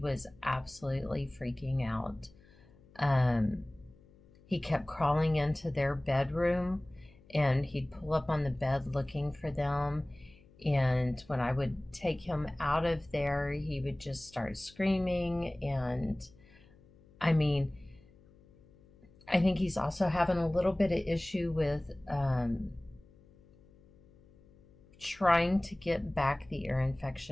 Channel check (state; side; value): noise; left; hum, 27 dB below the sound